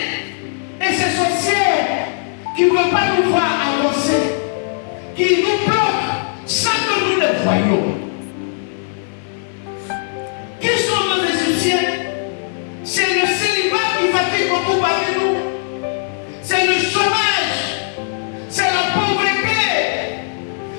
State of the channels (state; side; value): silent; right; digital silence